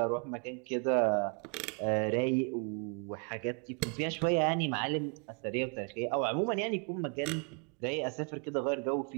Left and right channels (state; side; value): quieter; left; 38.7 dB